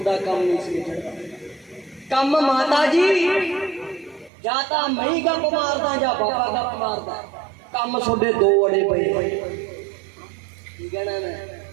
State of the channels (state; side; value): drops out; left; at 4.3 s